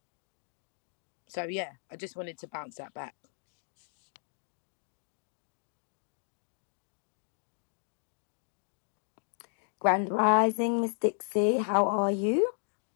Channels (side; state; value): right; silent; digital silence